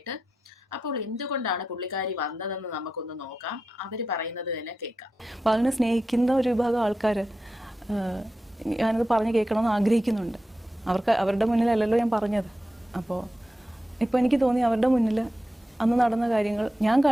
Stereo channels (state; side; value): normal; both; correlation 0.90